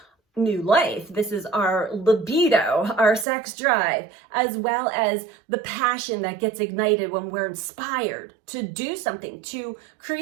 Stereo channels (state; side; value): drops out; left; at 3.2 s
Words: new life. This is our libido, our sex drive, as well as the passion that gets ignited when we're inspired to do something, to